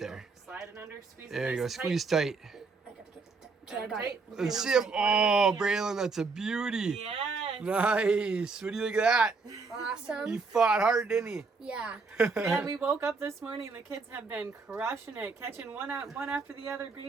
go. Slide it under. Squeeze it. There you go, nice and squeeze tight. I gotta get it. Okay, I got it. Let's see if, oh, Braylon, that's a beauty. Yes. Nice. What do you think of that? He Awesome. fought hard, didn't he? Yeah. Yeah, we woke up this morning. The kids have been crushing it, catching one after the other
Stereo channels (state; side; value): quieter; left; 4.3 dB